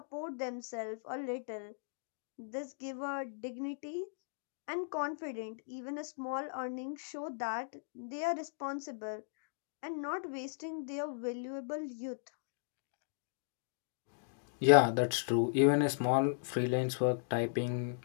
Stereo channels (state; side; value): silent; right; digital silence